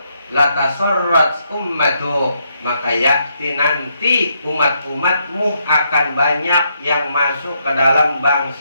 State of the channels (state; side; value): inverted; both; correlation -0.77